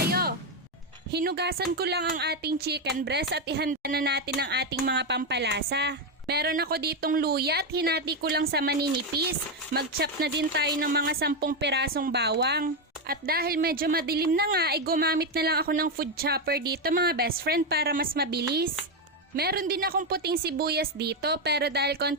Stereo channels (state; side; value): normal; both; correlation 0.07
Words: Hinugasan ko lang ang ating chicken breast at ihanda na natin ang ating mga pampalasa. Meron ako ditong luya at hinati ko lang sa maninipis. Mag-chop na din tayo ng mga 10 pirasong bawang. At dahil medyo madilim na nga ay gumamit na lang ako ng food chopper dito mga best friend para mas mabilis. Meron din akong puting sibuyas dito pero dahil